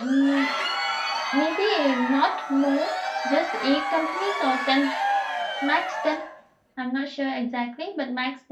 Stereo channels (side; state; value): both; identical; correlation 1.00